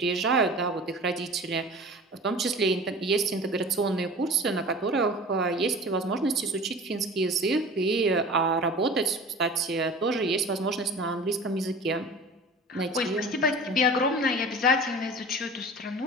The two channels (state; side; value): normal; both; correlation 0.39